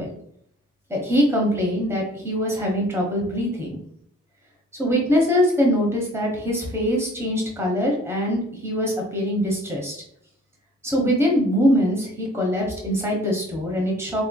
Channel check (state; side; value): normal; both; correlation 0.53